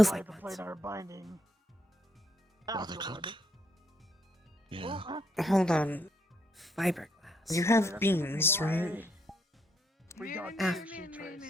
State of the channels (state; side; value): normal; both; correlation 0.74